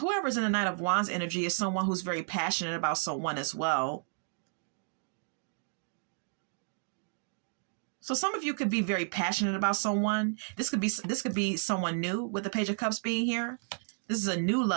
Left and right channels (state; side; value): silent; left; digital silence